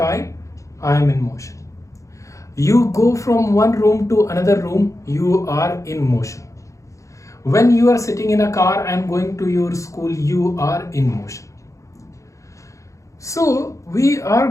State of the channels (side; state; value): right; late; 0.15 ms